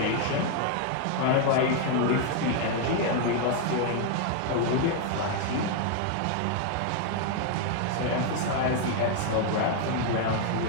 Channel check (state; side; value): different; both; correlation 0.00